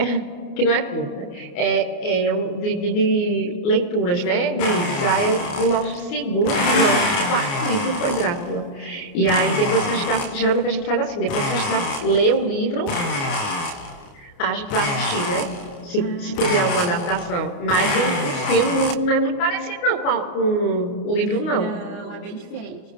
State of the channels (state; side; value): late; right; 29 ms